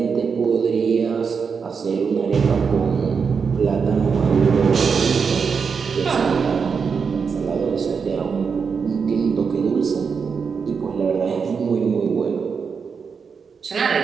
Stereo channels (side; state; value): left; quieter; 5.8 dB